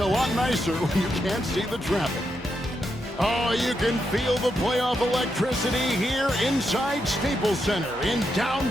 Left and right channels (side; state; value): both; normal; correlation 0.83